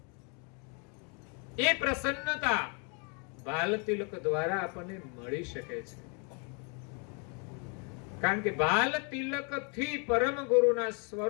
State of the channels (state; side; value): quieter; right; 36.6 dB